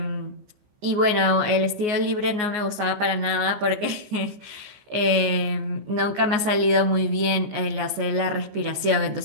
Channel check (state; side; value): late; left; 14 ms